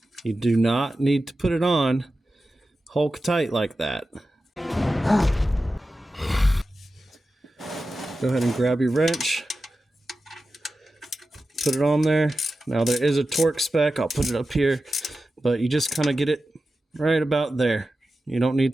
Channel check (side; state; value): both; normal; correlation 0.93